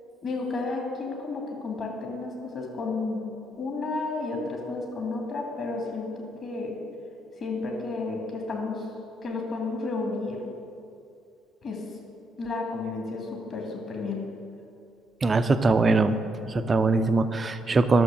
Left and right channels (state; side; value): normal; both; correlation 0.78